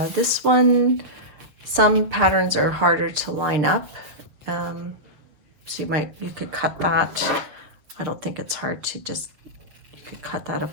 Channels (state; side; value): late; left; 7.0 ms